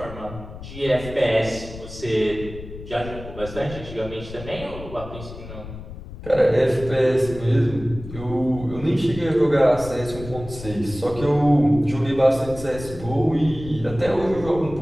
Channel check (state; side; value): noise; left; rumble, 13 dB below the sound